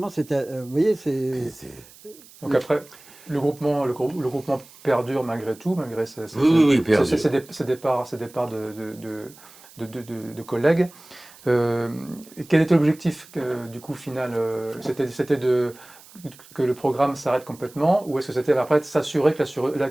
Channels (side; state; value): right; noise; hiss, 23 dB below the sound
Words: c'était, vous voyez, c'est. Donc après, le groupement perdure malgré tout, malgré ces départs de collègues. Quel était l'objectif du coup final? C'était que le programme s'arrête complètement, ou est-ce que c'était après de s'assurer